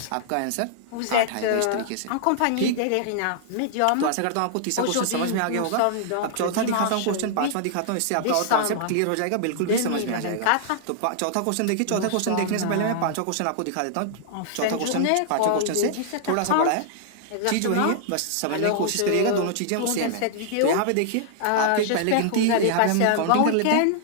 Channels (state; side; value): different; both; correlation -0.01